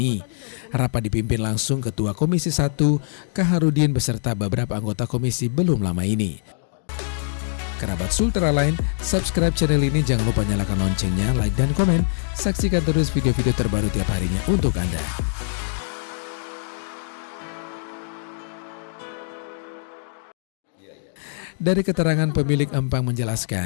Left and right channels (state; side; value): silent; right; digital silence